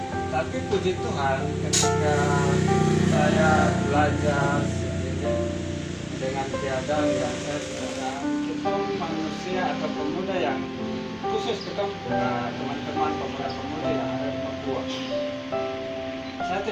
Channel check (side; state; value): both; identical; correlation 1.00